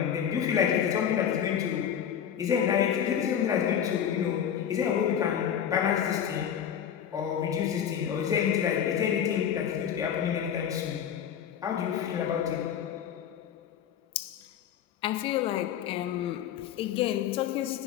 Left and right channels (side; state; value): right; quieter; 8.9 dB